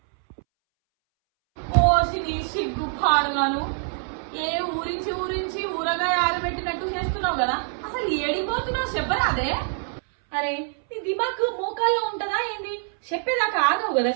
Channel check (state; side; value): silent; left; 62 dB below the other